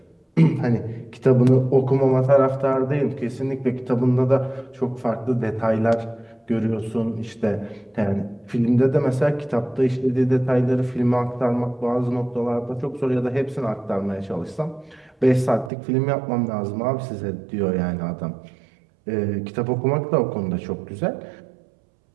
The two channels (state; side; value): drops out; left; at 15.7 s